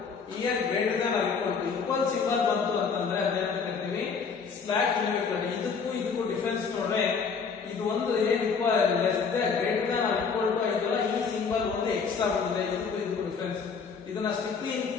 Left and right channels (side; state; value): right; quieter; 5.6 dB